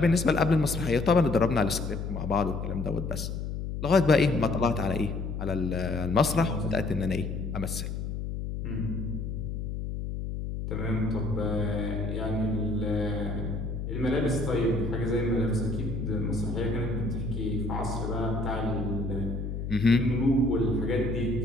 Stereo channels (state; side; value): noise; left; hum, 4 dB below the sound